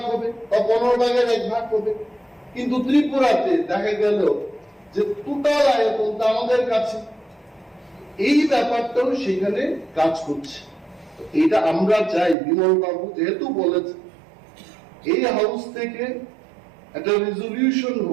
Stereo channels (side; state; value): left; drops out; at 12.4 s